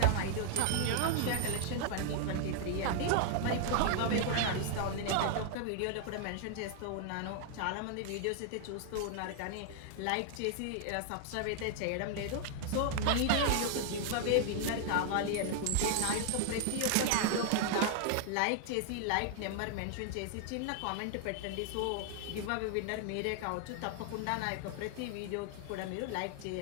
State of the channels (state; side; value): different; both; correlation 0.00